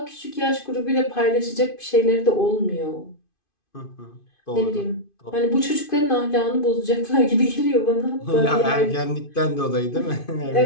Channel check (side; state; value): right; late; 2.5 ms